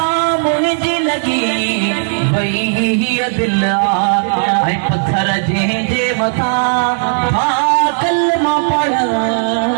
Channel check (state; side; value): silent; left; digital silence